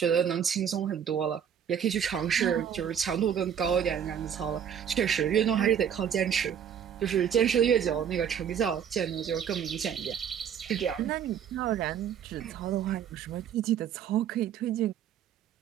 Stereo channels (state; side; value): quieter; left; 8.5 dB